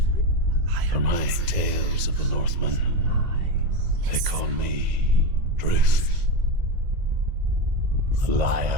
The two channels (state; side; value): late; left; 2.0 ms